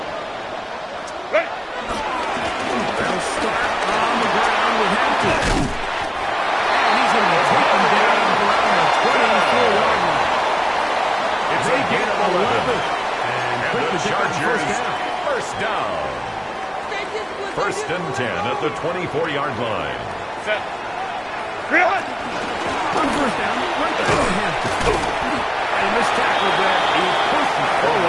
Chargers first down. First and 10 at the 24-yard line. Set. On first down, right there in Hampton. And this tackle there, he pushes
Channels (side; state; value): both; identical; correlation 1.00